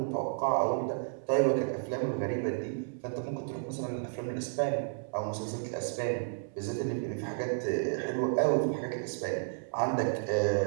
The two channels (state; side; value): silent; left; 56 dB below the other